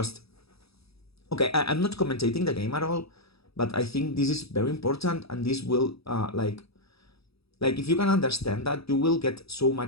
Okay, I'm not commentating the game at all, but I think this is very important, and this will like if you can understand that, you will get so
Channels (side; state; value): right; late; 0.77 ms